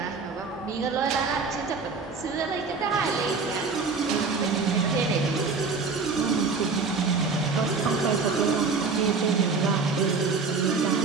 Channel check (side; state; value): left; quieter; 4.6 dB